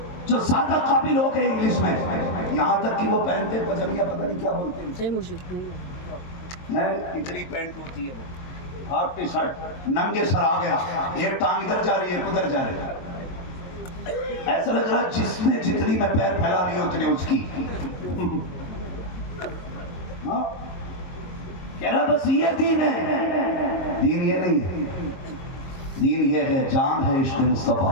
جو زیادہ قابل ہو گئے انگلش میں، یہاں تک کہ وہ پہنتے پجامیہ پتہ نہیں کیا بولتے ہیں، اتنی پینٹ ہوتی ہے، وہ ہاف ٹی شرٹ، ننگے سر آ گیا، ایک ٹانگ ادھر جا رہی ہے ادھر جا رہی ہے، ایسا لگ رہا جس نے جتنی میں پیر پھیلا نہیں اتنے اس کی، ہاں کہہ رہا بس یہ دین ہے۔ دین یہ نہیں ہے، دین یہ ہے، جان ہے عشق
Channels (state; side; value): late; right; 22 ms